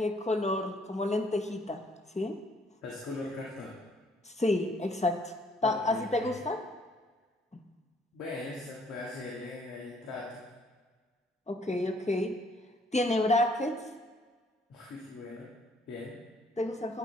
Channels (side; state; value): both; normal; correlation 0.65